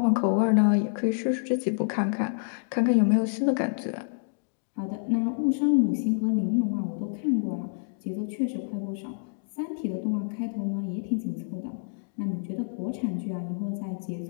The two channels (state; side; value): silent; right; digital silence